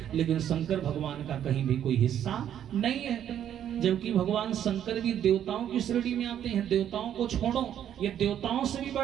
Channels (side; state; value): left; quieter; 10.2 dB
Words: लेकिन शंकर भगवान का कहीं भी कोई हिस्सा नहीं है। जबकि भगवान शंकर भी देवताओं की श्रेणी में आते हैं। देवताओं को छोड़ो, ये देवताओं से भी